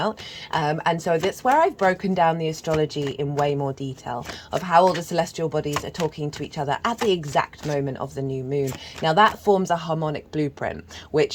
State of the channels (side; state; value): both; identical; correlation 1.00